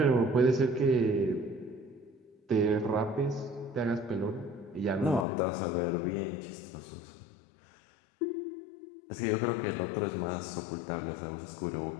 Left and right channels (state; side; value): drops out; right; at 5.2 s